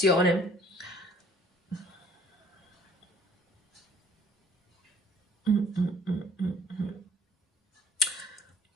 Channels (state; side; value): normal; both; correlation 0.57